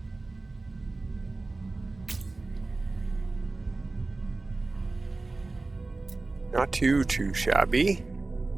Not too shabby.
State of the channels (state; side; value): quieter; left; 3.4 dB